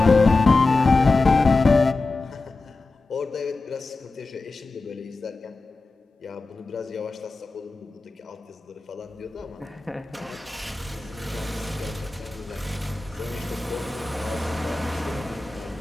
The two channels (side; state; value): right; quieter; 3.5 dB